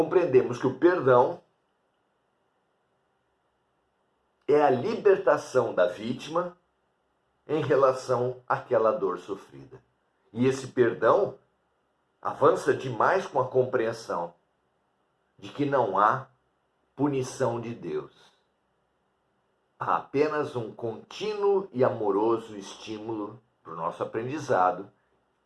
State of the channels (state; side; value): identical; both; correlation 1.00